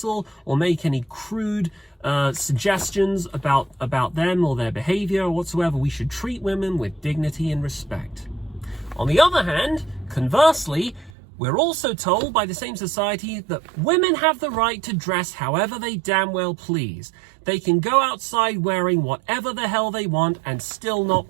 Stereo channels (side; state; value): left; drops out; at 11.1 s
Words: or make any crude suggestions about them or their behavior or whatsoever. We should treat women with dignity and respect. On the other hand, conversely, we're also told by the same society that women have the right to dress however they damn well please. They can go outside wearing whatever the hell they want and still not